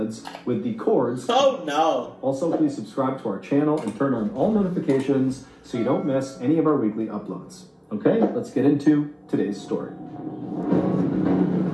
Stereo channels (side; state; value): both; identical; correlation 1.00